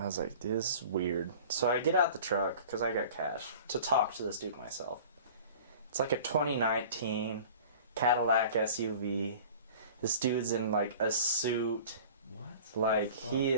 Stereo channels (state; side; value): inverted; both; correlation -0.43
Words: I was like, dude, this is weird. So I get out the truck, because I got cash, to talk to this dude myself. It's like a 2019 Cadillac SUV. This dude's in like a suit. What? Like, he